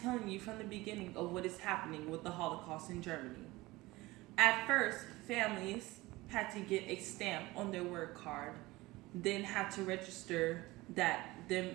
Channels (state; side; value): quieter; left; 20.2 dB